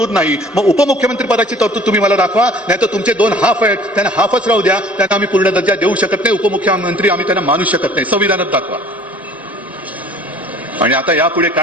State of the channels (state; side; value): normal; both; correlation 0.51